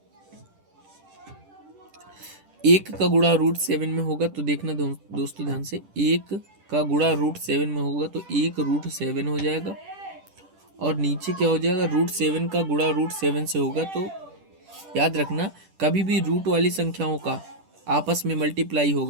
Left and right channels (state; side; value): late; left; 10 ms